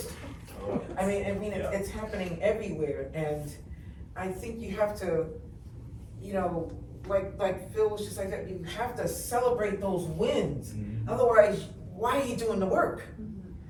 I mean, it's happening everywhere, and I think you have to, like Phil was just like that, you have to celebrate those wins. Otherwise, why are you doing the work?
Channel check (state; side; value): identical; both; correlation 1.00